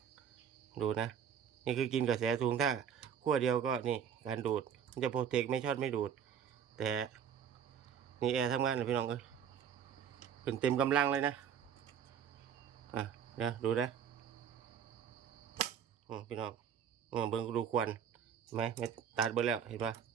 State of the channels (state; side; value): quieter; left; 8.3 dB